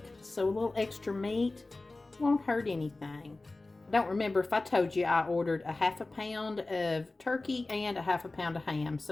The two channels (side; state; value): right; quieter; 3.2 dB